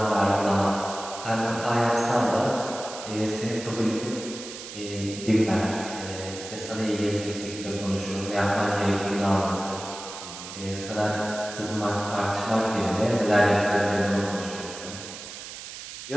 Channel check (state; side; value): noise; right; hiss, 11 dB below the sound